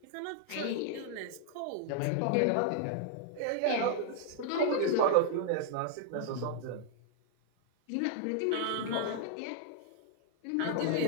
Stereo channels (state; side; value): different; both; correlation 0.00